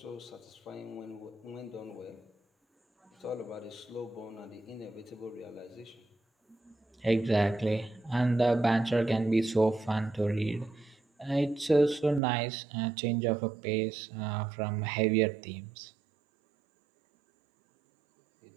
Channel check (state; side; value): drops out; left; at 12.2 s